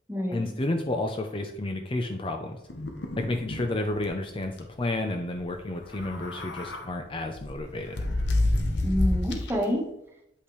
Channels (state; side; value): normal; both; correlation 0.81